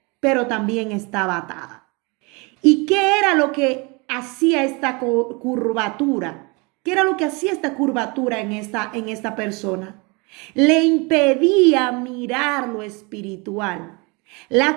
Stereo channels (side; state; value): left; quieter; 28.8 dB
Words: pero también estaba atada. ¿Y qué era lo que hacía esta curvatura? ¿Qué era lo que hacía esta curvatura en esta persona? Le impedía mirar lo espiritual.